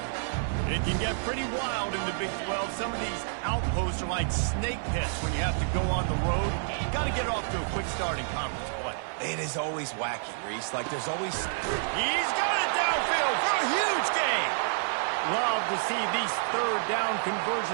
It can get pretty wild in the Big 12. Some of these outposts are like snake pits when you have to go on the road. Got to get off to a quick start in conference play. It is always wacky, Reese. Like there's always... He's got it downfield for a huge gain. Love to see these 3rd down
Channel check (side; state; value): left; silent; 59 dB below the other